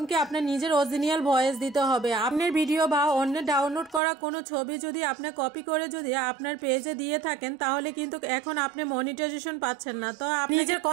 কি আপনার নিজের অরিজিনাল ভয়েস দিতে হবে। আপনার ভিডিও বা অন্যের ডাউনলোড করা কোনো ছবি যদি আপনি কপি করে যদি আপনার পেজে দিয়ে থাকেন তাহলে কিন্তু এখন আপনি মনিটাইজেশন পাচ্ছেন না। তো আপনি নিজের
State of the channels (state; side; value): drops out; left; at 4.0 s